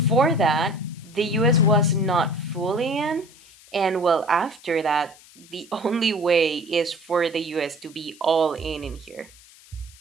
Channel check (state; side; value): noise; left; hiss, 24 dB below the sound